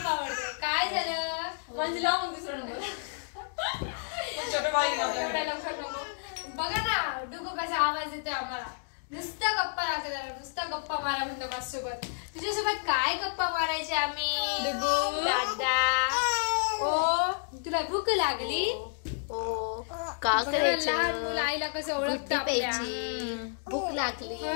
आवडतं. काय झालं म्हणजे लावून दुसरं नंबर छोटं बाळ एवढ्या लवकर नको. बघा ना डुगू कसा आवाज येतोय आम्हाला. नुसता गप्पा लागतो त्याला, नुसता गप्पा मारा म्हणतो माझ्यासोबत. तुझ्यासोबत काय गप्पा मारायचे आम्ही दादा? ओ तुला भूक लागली? ओ का करायचं? लहान मुलं आईला कसं ओळखतं भूक लागली,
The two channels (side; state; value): right; silent; digital silence